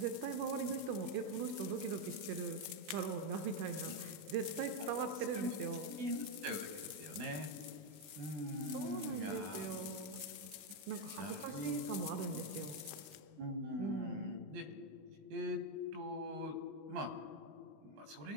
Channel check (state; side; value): late; left; 19 ms